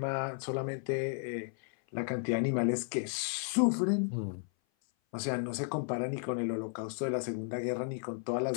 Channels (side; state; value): right; silent; 55 dB below the other